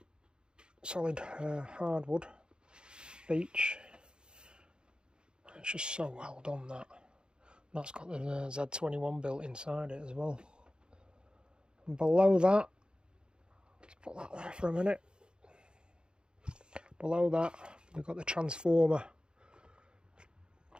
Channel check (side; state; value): left; late; 0.049 ms